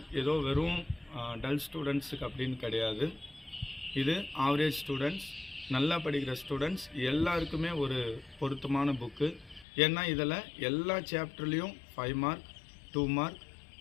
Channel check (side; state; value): right; drops out; at 9.7 s